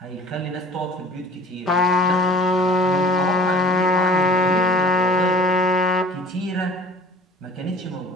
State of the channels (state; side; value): normal; both; correlation 0.47